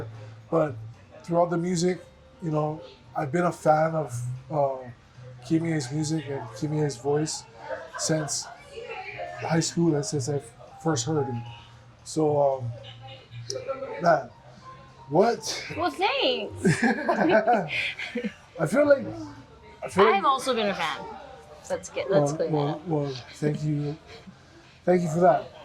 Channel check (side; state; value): both; identical; correlation 1.00